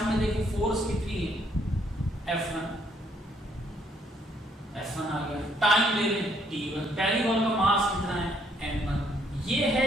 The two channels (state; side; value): normal; both; correlation 0.69